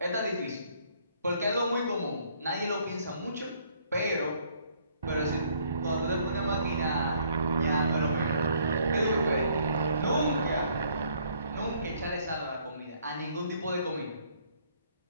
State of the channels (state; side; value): inverted; both; correlation -0.65